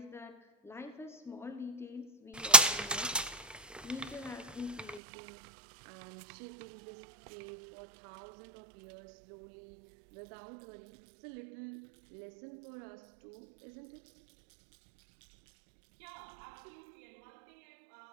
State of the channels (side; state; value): left; drops out; at 5.0 s